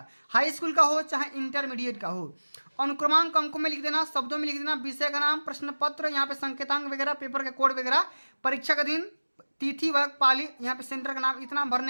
हाई स्कूल का हो चाहे इंटरमीडिएट का हो। अनुक्रमांक अंकों में लिख देना, शब्दों में लिख देना, विषय का नाम, प्रश्न पत्र, यहाँ पे संकेतांक वगैरह, पेपर के कोड वगैरह, परीक्षा का दिन, तिथि, वर्ग, पाली, यहाँ पे सेंटर का नाम, इतना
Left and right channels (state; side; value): inverted; both; correlation -1.00